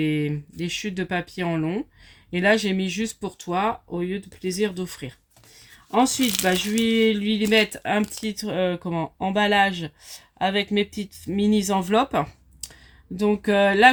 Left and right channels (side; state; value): both; identical; correlation 1.00